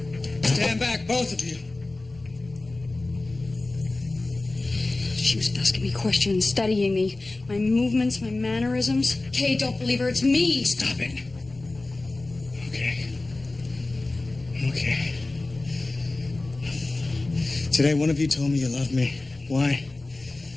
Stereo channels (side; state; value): right; quieter; 3.1 dB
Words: Stand back, both of you. She was asking me questions, studying me, my movements, my mannerisms. Cade, don't believe her, it's me! Stop it. Okay. Okay. Today, one of you told me you loved me. Why?